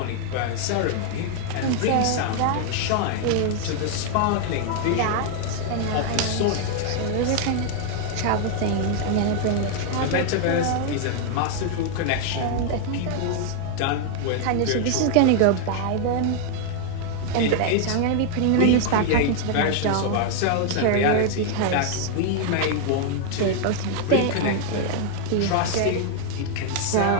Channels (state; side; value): different; both; correlation 0.00